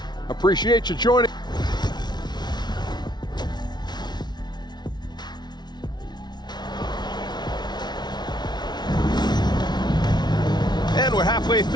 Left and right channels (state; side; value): late; right; 0.20 ms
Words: Appreciate you joining. And we're halfway